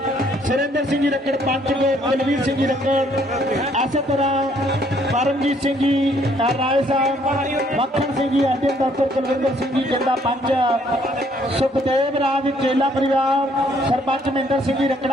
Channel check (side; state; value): both; normal; correlation 0.65